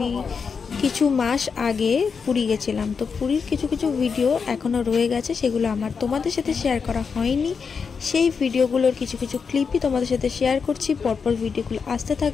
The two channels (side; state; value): right; quieter; 5.7 dB